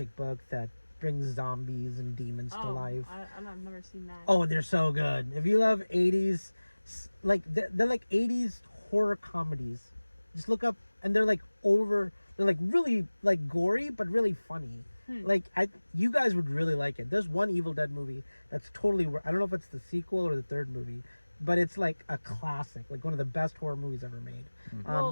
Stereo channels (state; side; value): inverted; both; correlation -1.00